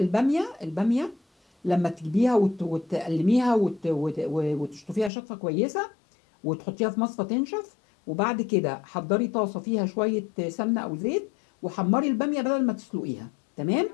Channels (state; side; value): drops out; right; at 5.1 s